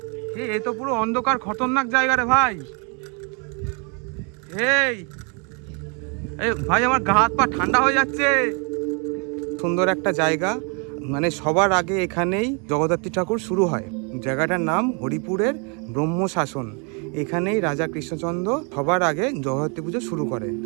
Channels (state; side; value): quieter; left; 35.7 dB